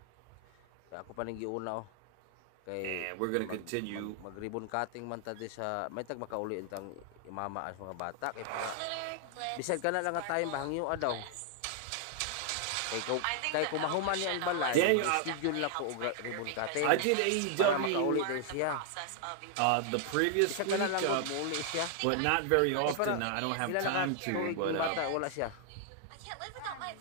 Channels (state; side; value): different; both; correlation 0.00